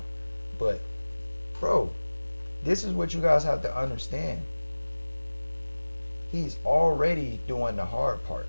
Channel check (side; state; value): both; inverted; correlation -1.00